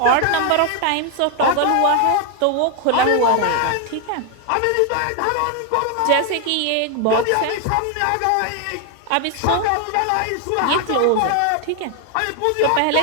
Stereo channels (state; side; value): different; both; correlation 0.01